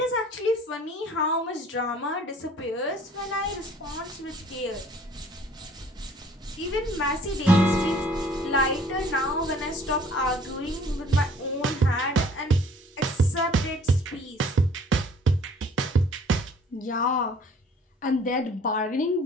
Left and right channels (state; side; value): normal; both; correlation 0.54